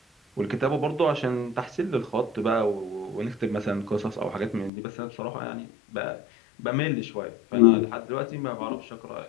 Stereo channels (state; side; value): drops out; right; at 4.7 s